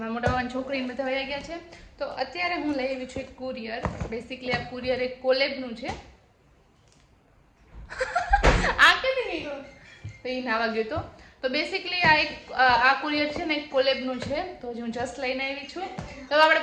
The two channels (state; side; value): identical; both; correlation 1.00